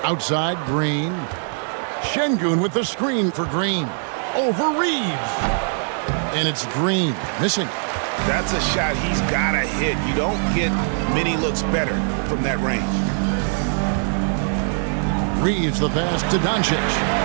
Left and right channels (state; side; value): silent; left; 58 dB below the other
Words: Outside, Green. Şengün with the screen for Green. Over Reeves. And it's Green missing. That's a shot he's got to hit. You don't get many looks better from that range. Reeves the pass to Doncic.